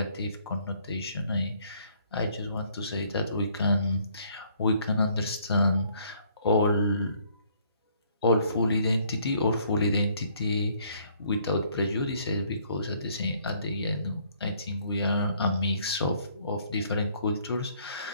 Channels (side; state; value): both; inverted; correlation -0.64